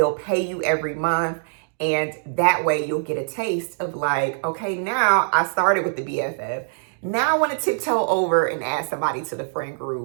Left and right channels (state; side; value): silent; left; digital silence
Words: pay you every month. And that way you'll get a taste of like, okay, now I started with the BFF. Now I want to tiptoe over and add somebody to the friend